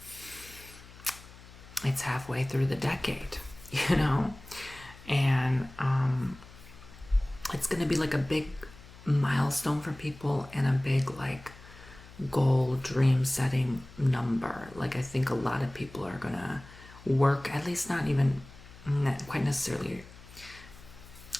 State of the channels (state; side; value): noise; left; hum, 20 dB below the sound